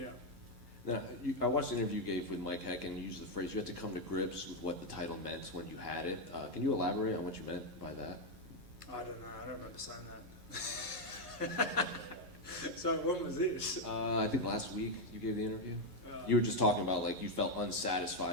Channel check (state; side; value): late; left; 11 ms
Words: out. Now, I watched the interview you gave with Mike Heck, and you used the phrase you had to come to grips with what the title meant when you had it. Can you elaborate on what you meant by that? I don't know. I don't remember saying that. So when was this? I think last week you gave the interview. You were just talking about like you felt